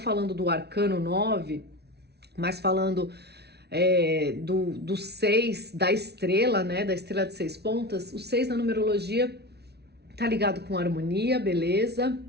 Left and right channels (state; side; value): late; left; 0.48 ms